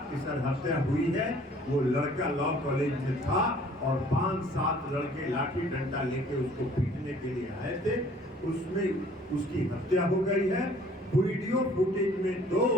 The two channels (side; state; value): both; normal; correlation 0.55